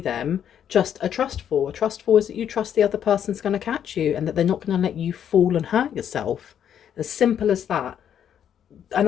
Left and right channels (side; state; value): right; quieter; 9.3 dB